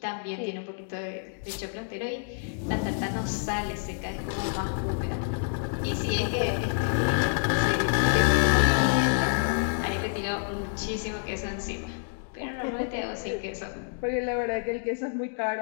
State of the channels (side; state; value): right; silent; digital silence